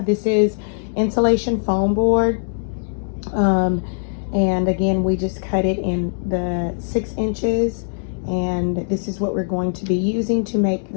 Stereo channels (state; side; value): silent; right; digital silence